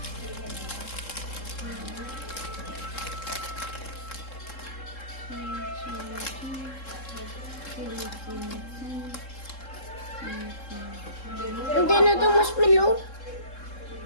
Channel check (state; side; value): late; right; 3.7 ms